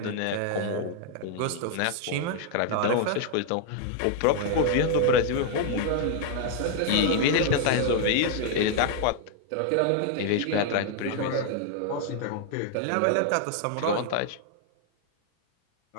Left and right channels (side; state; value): both; different; correlation 0.00